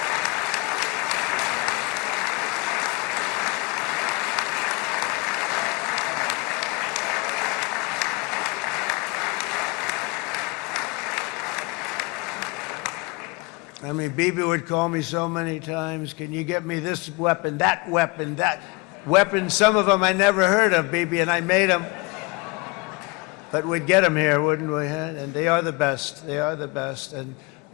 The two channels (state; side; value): quieter; right; 26.9 dB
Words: I mean, Bibi would call me so many times, can you get me this weapon, that weapon, that weapon? Some of them I never heard of, Bibi, and I made them. But we'd get them here, wouldn't we? And they are the best. They are the best.